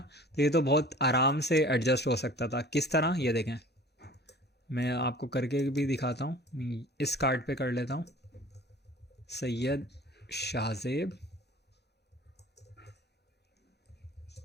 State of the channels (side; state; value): both; normal; correlation 0.46